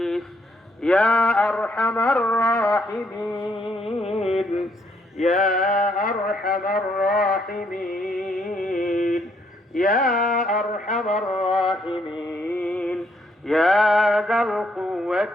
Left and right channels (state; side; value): normal; both; correlation 0.71